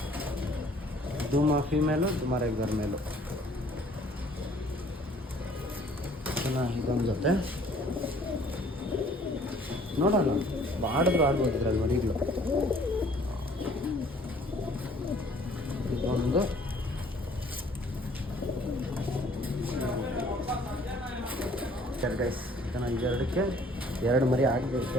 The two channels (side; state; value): both; normal; correlation 0.57